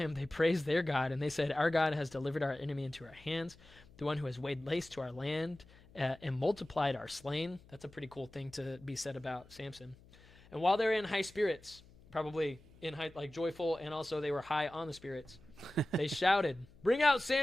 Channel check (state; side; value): noise; left; hum, 24 dB below the sound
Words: they praised their God, and they said, our God has delivered our enemy into our hands, the one who has laid waste to our land and multiplied our slain. That's a pretty cool thing to be said about Samson. And while they're in high spirits, probably in high, joyful, and also they were high on the spirits, they shouted, bring out